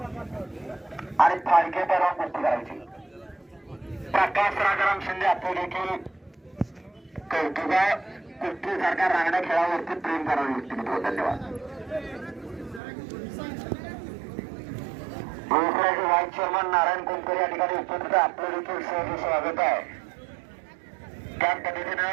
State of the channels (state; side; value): drops out; left; at 12.8 s